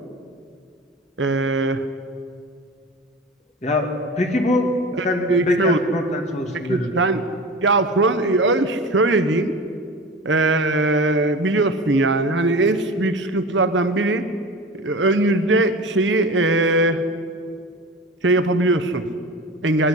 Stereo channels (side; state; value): both; normal; correlation 0.33